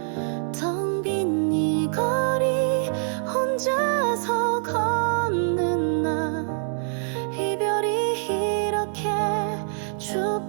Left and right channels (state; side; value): silent; left; 62 dB below the other